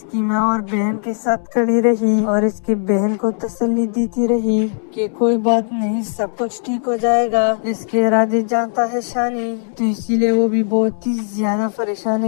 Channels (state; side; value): silent; right; digital silence